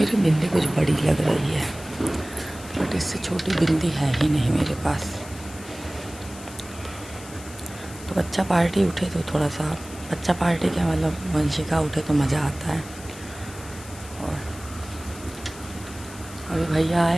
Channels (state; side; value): noise; left; hiss, 17 dB below the sound